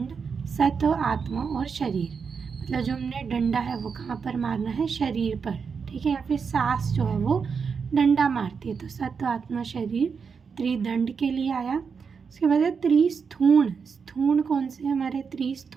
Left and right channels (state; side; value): quieter; left; 5.8 dB